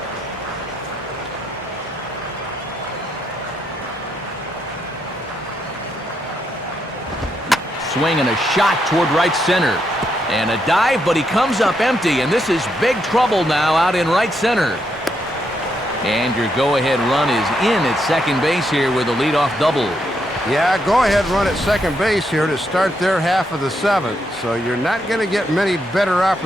swing and a shot toward right center. And a dive, but he comes up empty, and this is big trouble now out in right center. And your go-ahead run is in at second base here with a leadoff double. Yeah, go-ahead run at second base here to start their half of the seventh, so you're not going to get many better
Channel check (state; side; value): normal; both; correlation 0.79